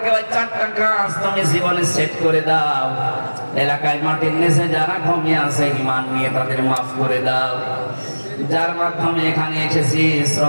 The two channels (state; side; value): inverted; both; correlation -1.00